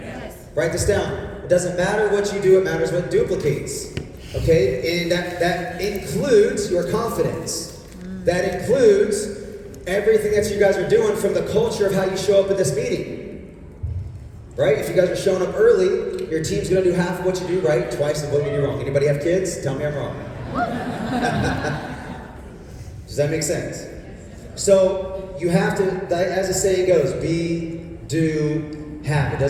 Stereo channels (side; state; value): both; identical; correlation 1.00